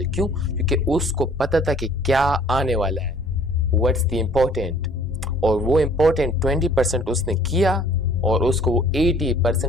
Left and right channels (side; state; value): both; normal; correlation 0.54